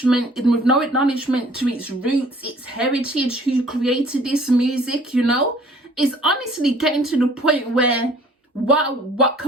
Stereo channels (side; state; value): both; normal; correlation 0.54